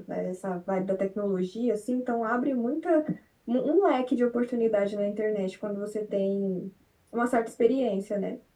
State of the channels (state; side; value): identical; both; correlation 1.00